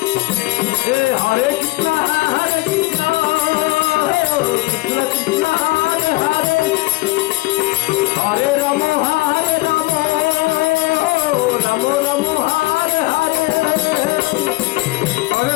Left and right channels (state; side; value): quieter; right; 21.4 dB